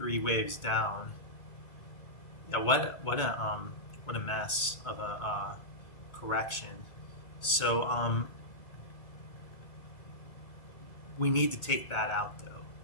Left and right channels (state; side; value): late; right; 2.2 ms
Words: waves down. Yeah, what a mess of a correction. So we need to take that out though.